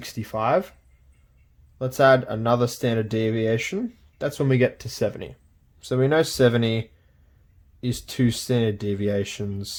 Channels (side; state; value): both; identical; correlation 1.00